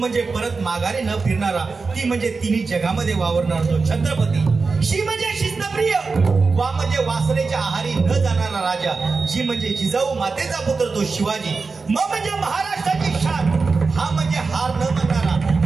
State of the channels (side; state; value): left; quieter; 4.4 dB